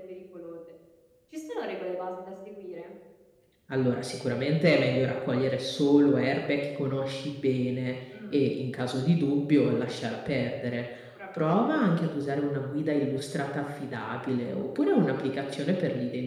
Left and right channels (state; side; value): identical; both; correlation 1.00